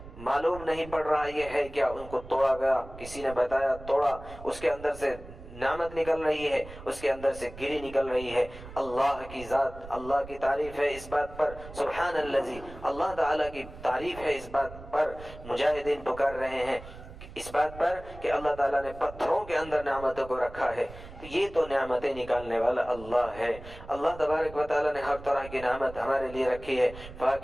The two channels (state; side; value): noise; right; rumble, 15 dB below the sound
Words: معلوم نہیں پڑ رہا یہ ہے کیا، ان کو توڑا گیا، کسی نے بتایا، توڑا، اس کے اندر سے نعمت نکل رہی ہے، اس کے اندر سے گری نکل رہی ہے۔ اللہ کی ذات، اللہ کی تعریف ہے اس بات پر، سبحان الذی، اللہ تعالیٰ کی تعریف ہے اس بات پر۔ مجاہدین پکار رہے ہیں اس بات پر کہ اللہ تعالیٰ نے پتھروں کے اندر نعمتوں کو رکھا ہے، تو یہ تو نعمتیں نکالنے والا اللہ ہے۔ اللہ تبارک و تعالیٰ نے ہر طرح کی نعمت ہمارے لیے رکھی ہے،